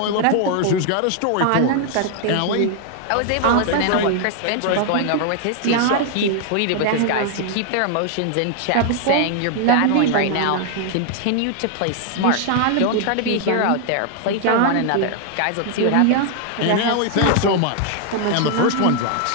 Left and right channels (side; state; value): both; different; correlation 0.00